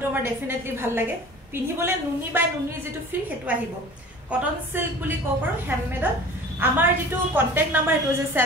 আমাৰ ডেফিনেটলি ভাল লাগে পিন্ধিবলে নুনি বাই নুনি যেটো ফিল হেতু আহিব কটন সিল্ক বুলি কব পাৰো হ্যান্ডমেডত আমাৰ যেটো কন্টাক্ট নাম্বাৰ এটো আছে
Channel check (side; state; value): both; normal; correlation 0.42